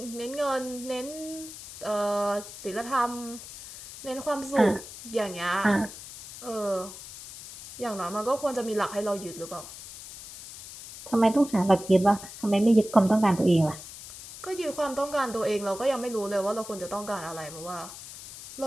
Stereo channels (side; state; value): left; noise; hiss, 14 dB below the sound